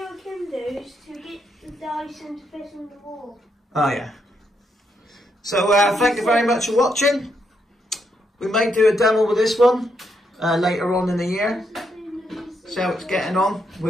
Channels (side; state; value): both; normal; correlation 0.78